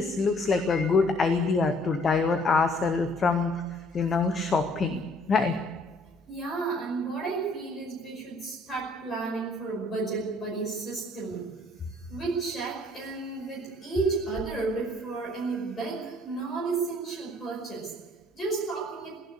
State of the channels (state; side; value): normal; both; correlation 0.60